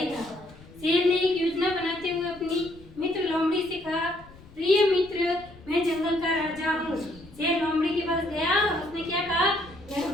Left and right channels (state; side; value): noise; left; rumble, 21 dB below the sound